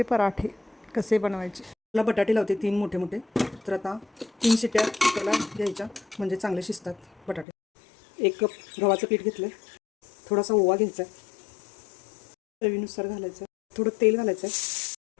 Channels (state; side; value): drops out; right; at 7.5 s